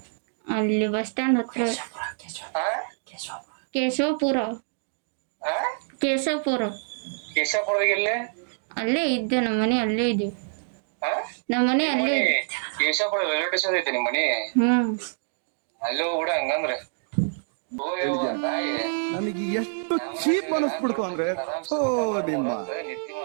ಅಲ್ಲಿ ಬಸ್ ಸ್ಟ್ಯಾಂಡ್ ಹತ್ರ. ಕೇಶವಪುರ. ಅಲ್ಲೇ ಇದ್ದೆ, ನಮ್ಮ ಮನೆ ಅಲ್ಲೇ ಇದೆ. ನಮ್ಮ ಮನೆ ಅಲ್ಲೇ ಇದೆ. ಕೇಶವಪುರ ರೈಲ್ವೆ ಸ್ಟೇಷನ್ ಐತೆ ನಿಮ್ಮ ಮನೆ? ಅಲ್ಲೋ ಕೂಡ ಹಂಗಂದ್ರೆ ನನಗೆ ಎಷ್ಟು ಚೀಪ್ ಅನಿಸ್ಬಿಡ್ತು ಅಂದ್ರೆ, ನಿಮ್ಮ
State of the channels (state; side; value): silent; left; 60 dB below the other